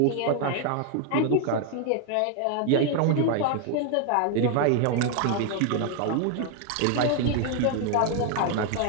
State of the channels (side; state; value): both; different; correlation 0.00